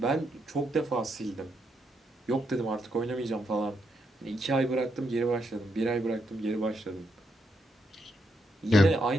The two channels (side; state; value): both; normal; correlation 0.79